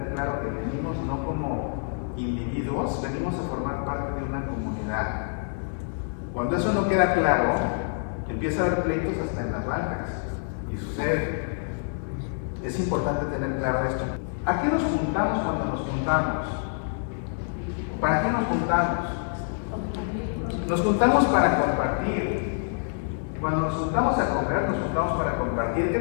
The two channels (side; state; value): right; silent; digital silence